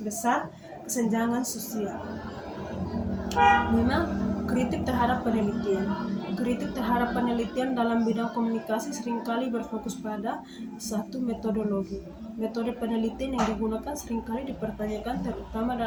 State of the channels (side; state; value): both; identical; correlation 1.00